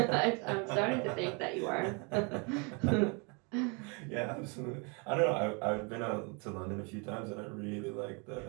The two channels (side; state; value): left; quieter; 33.1 dB